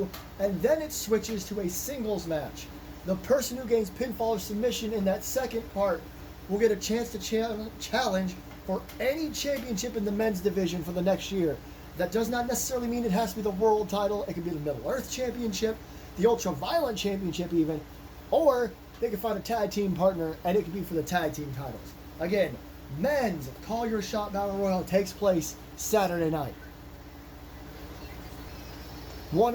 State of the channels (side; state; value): both; identical; correlation 1.00